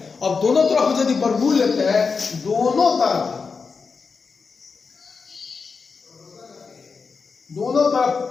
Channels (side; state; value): right; quieter; 5.0 dB